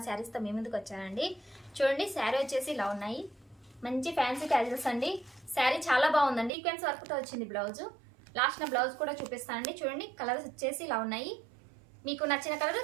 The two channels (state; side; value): drops out; left; at 6.5 s